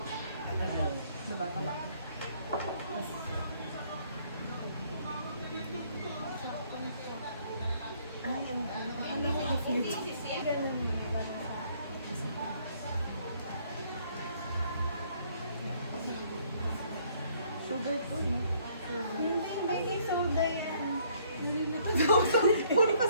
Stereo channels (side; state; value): both; inverted; correlation -0.64